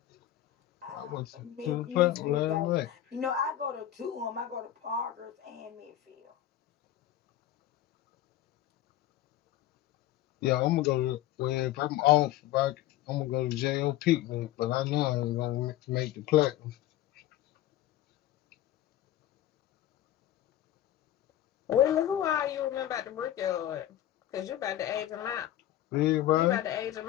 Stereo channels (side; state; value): right; quieter; 13.0 dB